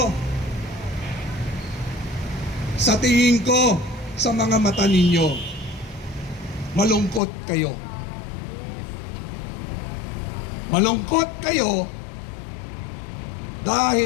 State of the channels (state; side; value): drops out; right; at 7.2 s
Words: sa tingin ko, sa mga mata ninyo, malungkot kayo. Malungkot kayo